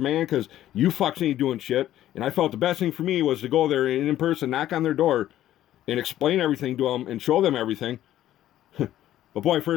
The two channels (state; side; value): quieter; right; 12.9 dB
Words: man, because you fucks ain't doing shit. And I felt the best thing for me was to go there and in person, knock on their door, and explain everything to them and show them everything. But boy,